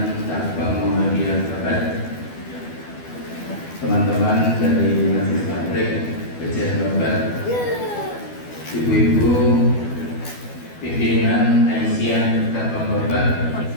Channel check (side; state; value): right; late; 12 ms